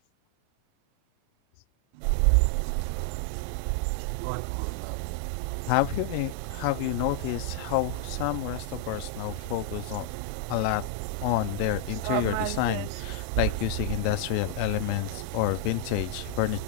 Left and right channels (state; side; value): different; both; correlation 0.00